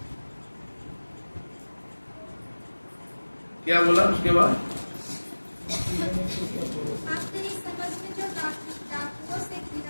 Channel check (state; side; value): inverted; both; correlation -1.00